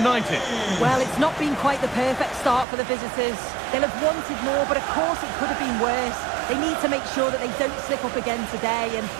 Well, it's not been quite the perfect start for the visitors. They'll have wanted more, but of course it could have been worse. They need to make sure that they don't slip up again today, and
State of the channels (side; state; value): left; drops out; at 2.7 s